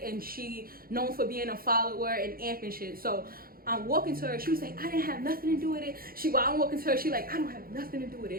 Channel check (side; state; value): left; late; 0.43 ms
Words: and she known for being a follower and amp and shit. So I'm walking to her. She was like, I didn't have nothing to do with it. While I'm walking to her, she like, I don't have nothing to do with